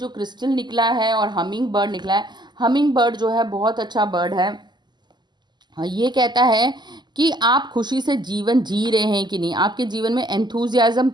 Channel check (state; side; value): late; left; 0.21 ms